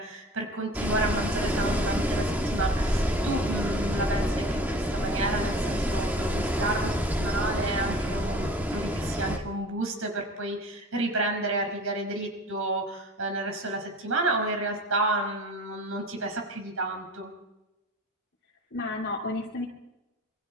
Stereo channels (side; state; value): both; normal; correlation 0.41